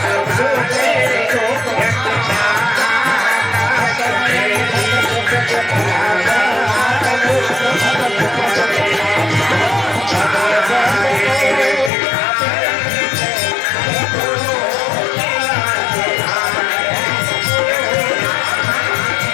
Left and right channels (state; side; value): drops out; right; at 11.9 s